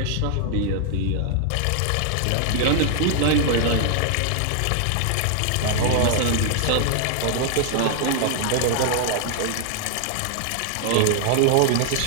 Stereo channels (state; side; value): different; both; correlation 0.00